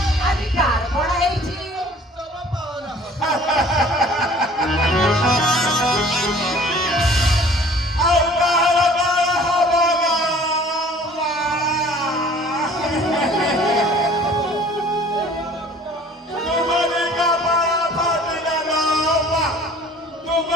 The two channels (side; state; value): both; normal; correlation 0.51